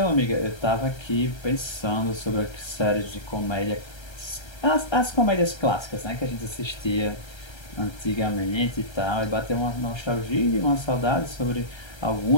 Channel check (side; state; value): right; late; 1.3 ms